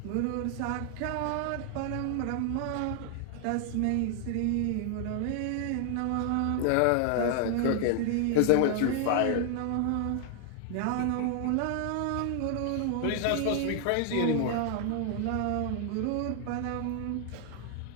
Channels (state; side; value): different; both; correlation 0.00